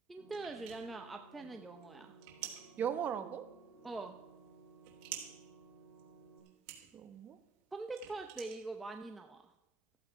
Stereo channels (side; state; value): left; quieter; 5.6 dB